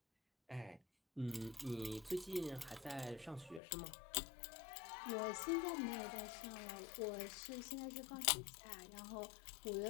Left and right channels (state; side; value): drops out; right; at 3.6 s